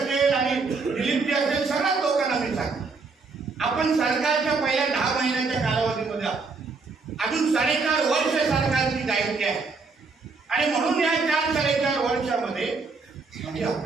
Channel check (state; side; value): quieter; left; 4.3 dB